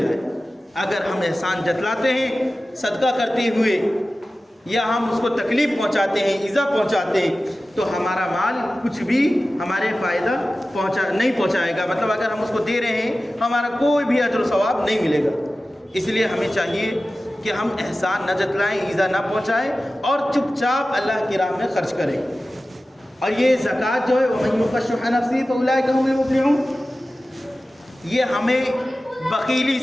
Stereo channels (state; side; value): normal; both; correlation 0.95